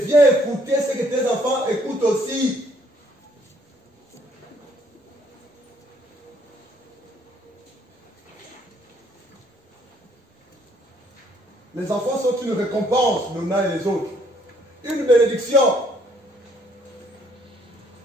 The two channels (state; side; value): normal; both; correlation 0.65